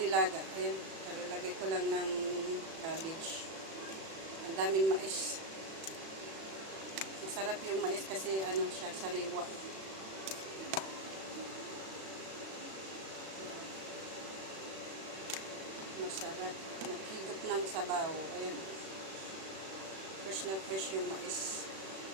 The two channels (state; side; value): late; left; 36 ms